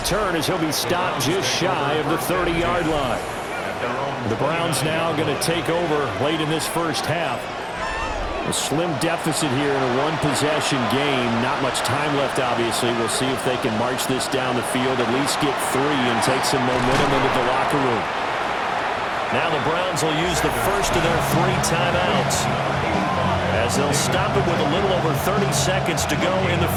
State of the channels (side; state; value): both; identical; correlation 1.00